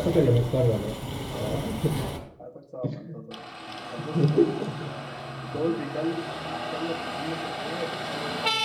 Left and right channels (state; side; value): identical; both; correlation 1.00